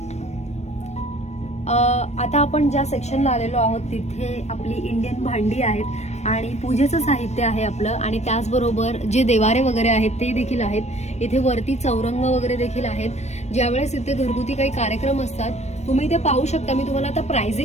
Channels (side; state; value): right; late; 0.32 ms